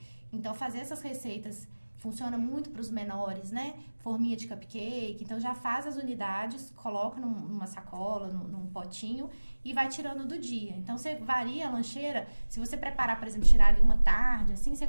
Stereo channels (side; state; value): both; inverted; correlation -1.00